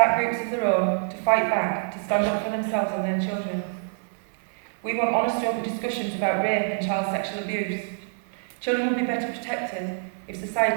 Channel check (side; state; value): left; silent; 61 dB below the other